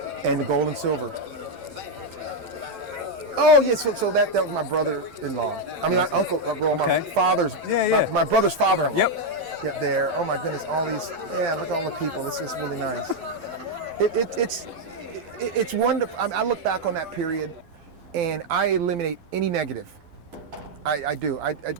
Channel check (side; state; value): left; late; 12 ms